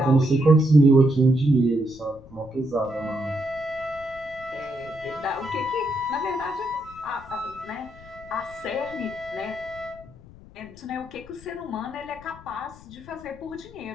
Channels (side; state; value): left; noise; rumble, 20 dB below the sound